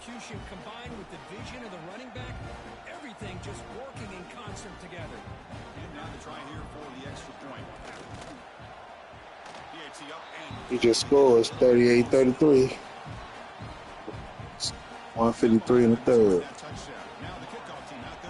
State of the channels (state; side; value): identical; both; correlation 1.00